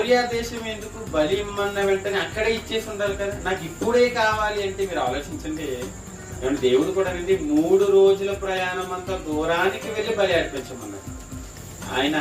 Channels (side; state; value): both; identical; correlation 1.00